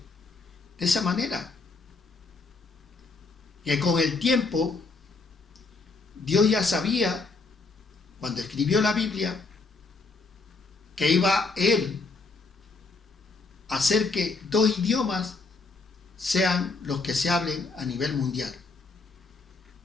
de esa manera, que con el tiempo Dios ya sabía, cuando escribió la Biblia, que iba Él a hacer que dos idiomas sean los que se hablen a nivel mundial.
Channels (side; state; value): right; quieter; 3.8 dB